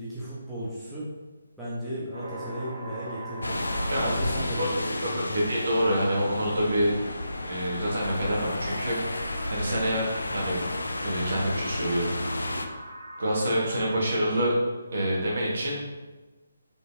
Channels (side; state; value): both; inverted; correlation -0.82